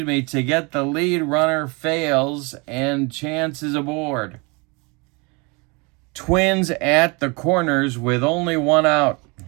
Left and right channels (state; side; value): quieter; left; 29.1 dB